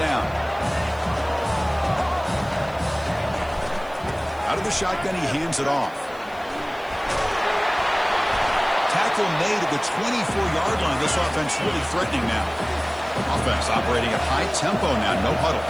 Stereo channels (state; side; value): noise; right; hiss, 27 dB below the sound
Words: Out of the shotgun, he hands it off. Tackle made at the 24-yard line. This offense really threatening now. Offense operating at high tempo now. No huddle.